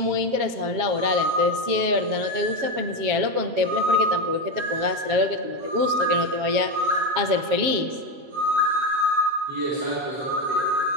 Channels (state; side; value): late; left; 7.5 ms